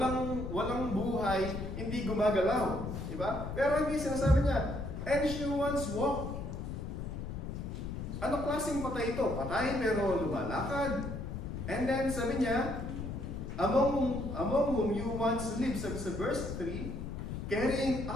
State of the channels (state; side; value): noise; left; rumble, 6 dB below the sound